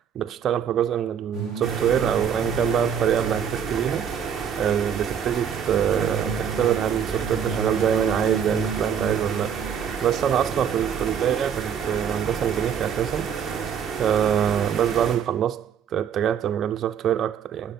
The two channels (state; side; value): quieter; left; 8.1 dB